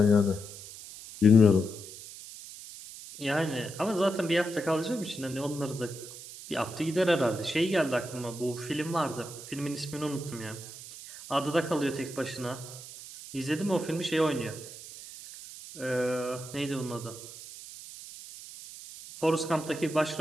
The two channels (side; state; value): right; noise; hiss, 14 dB below the sound